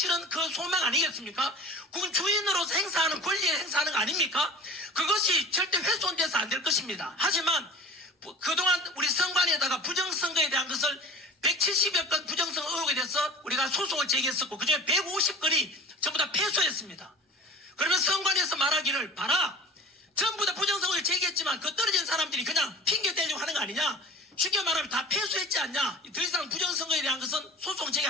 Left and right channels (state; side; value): normal; both; correlation 0.41